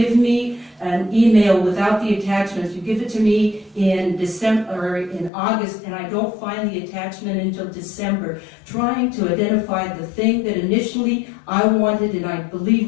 me an email without the attachments, you give it to me in December or in August, and I don't find the attachment until December, trying to identify the thing that initially I wanted, and I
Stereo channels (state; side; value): drops out; right; at 5.3 s